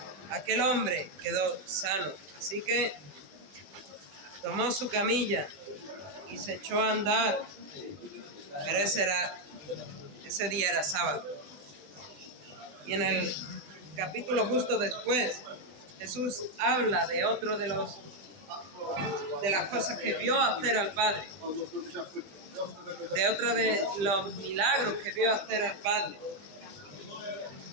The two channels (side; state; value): left; late; 20 ms